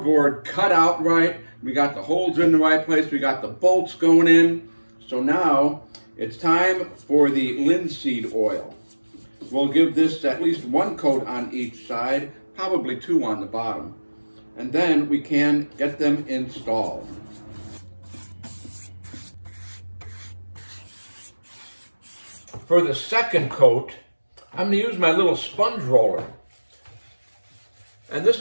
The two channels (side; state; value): both; inverted; correlation -1.00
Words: cut out right. We got the holes in the right place. We got the bolts going in. So now it's time for the linseed oil. We'll give this at least 1 coat on each side, probably 2 on the bottom. And then we can get them installed. For the second coat, I'm going to use my little sponge roller. And